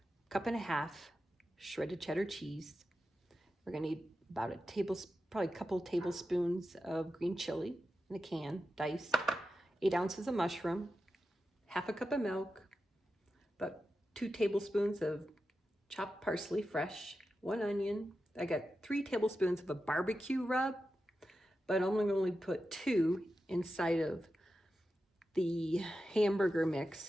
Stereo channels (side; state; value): both; normal; correlation 0.91